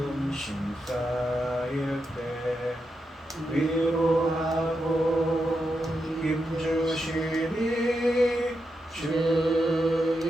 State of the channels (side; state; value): both; normal; correlation 0.86